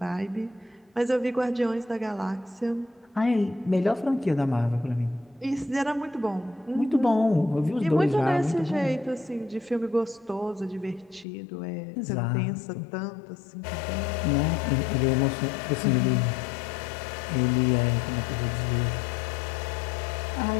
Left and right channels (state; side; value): drops out; right; at 11.2 s